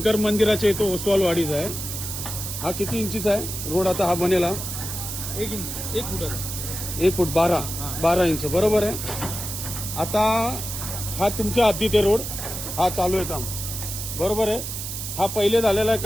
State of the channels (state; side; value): noise; right; hiss, 6 dB below the sound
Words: मंदिराच्या इथं ओसवालवाडीचा आहे. हा किती इंचीचा आहे रोड आता हा बनेला? 1 फुटाचा. 1 फूट 12 इंच बरोबर आहे. आता हा तुमच्या हद्दीत आहे रोड, हा चालू आहे काम बरोबर आहे. हा पहिले झालेला आहे